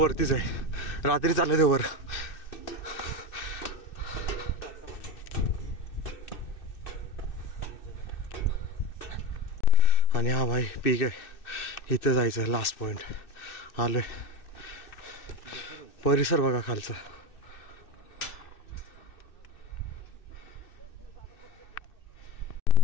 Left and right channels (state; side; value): late; right; 2.6 ms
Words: आहे, रात्री चालले ते वर. आणि हा भाई पीक आहे, इथं जायचं आहे. लास्ट पॉइंट आलोय. परिसर बघा खालचा.